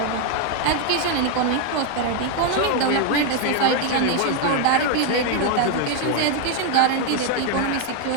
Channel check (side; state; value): both; different; correlation 0.01